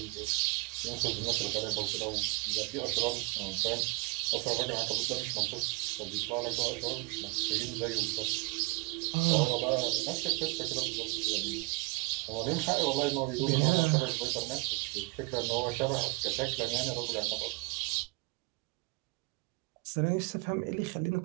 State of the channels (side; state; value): left; quieter; 25.8 dB